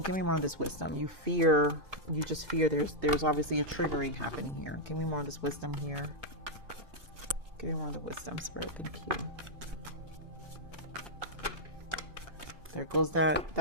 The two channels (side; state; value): left; late; 2.5 ms